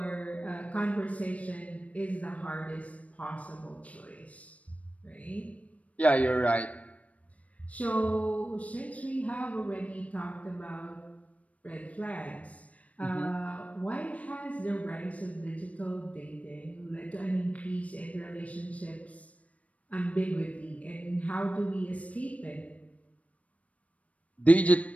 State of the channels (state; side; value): late; right; 0.066 ms